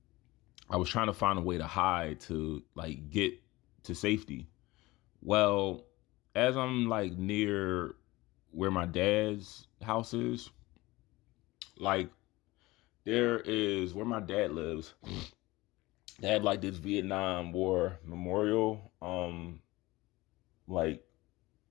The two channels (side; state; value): right; quieter; 20.1 dB